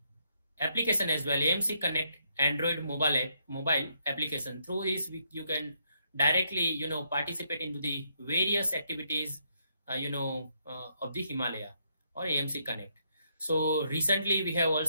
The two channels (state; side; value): inverted; both; correlation -0.75